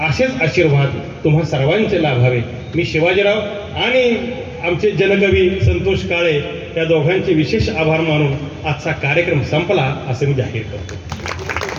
असेच आशीर्वाद तुम्हा सर्वांचे लाभावे. मी शिवाजीराव आणि आमचे जनकवी संतोष काळे या दोघांचे विशेष आभार मानून आजचा कार्यक्रम संपला असं मी जाहीर करतो.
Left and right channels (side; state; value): both; identical; correlation 1.00